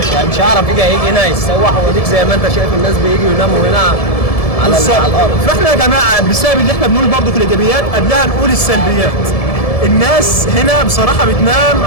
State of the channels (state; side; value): late; right; 1.7 ms